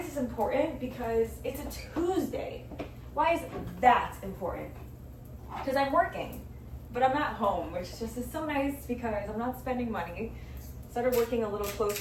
this important? Because it's a Tuesday. Why is that important? Because I'm working, but I'm not home, which just is so nice because I'm not spending money. Started working a little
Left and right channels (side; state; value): both; identical; correlation 1.00